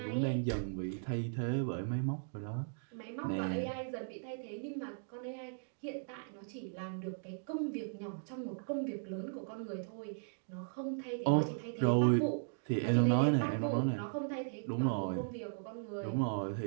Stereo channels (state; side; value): silent; left; digital silence